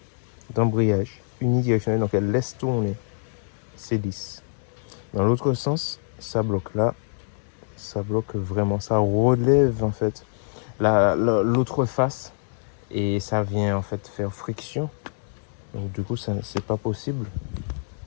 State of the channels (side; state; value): right; silent; digital silence